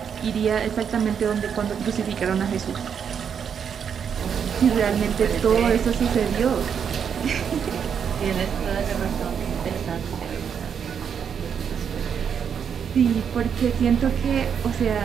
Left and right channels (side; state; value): left; quieter; 7.4 dB